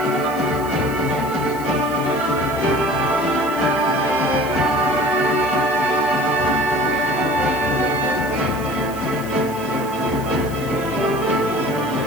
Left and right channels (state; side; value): noise; left; hiss, 17 dB below the sound